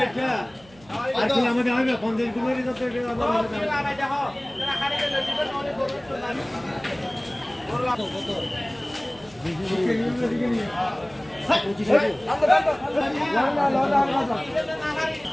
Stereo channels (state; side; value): noise; right; hum, 26 dB below the sound